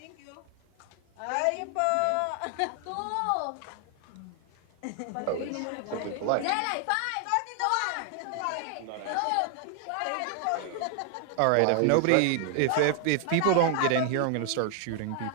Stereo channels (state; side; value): different; both; correlation 0.00